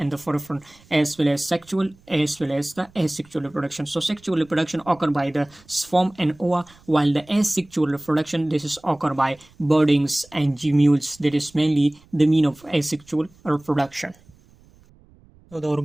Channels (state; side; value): noise; right; rumble, 28 dB below the sound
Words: the forefront, as well as sexual as well as the asexual reproduction. So sexual reproduction occur by the sperm and ova, while the asexual reproduction, this is occur by birdings and gemmules. That is mainly the mean of asexual reproduction. So the